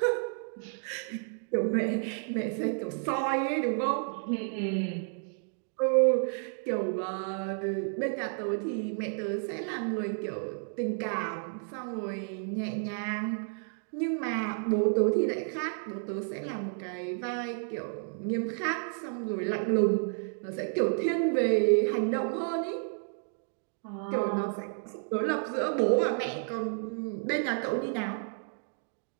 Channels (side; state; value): left; silent; 57 dB below the other